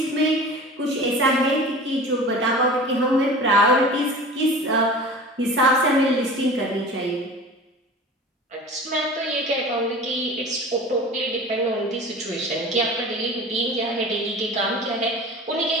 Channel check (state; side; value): normal; both; correlation 0.38